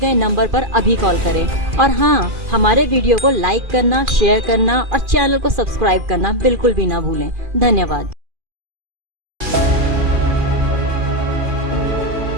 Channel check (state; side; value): late; left; 2.4 ms